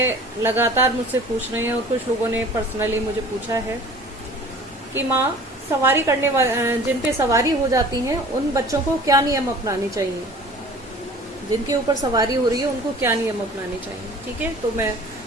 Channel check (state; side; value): normal; both; correlation 0.46